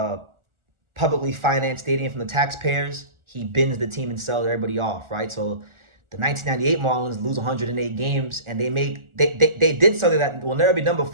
publicly financed stadium from the taxpayers. He bins the team and sells everybody off, right? So the 1998 Marlins lose 108 games, and they did something that will never be done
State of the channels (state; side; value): late; left; 1.4 ms